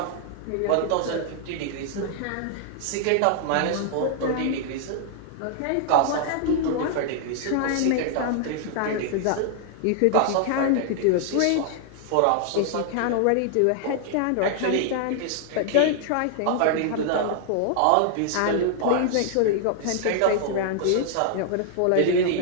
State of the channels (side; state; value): both; different; correlation -0.01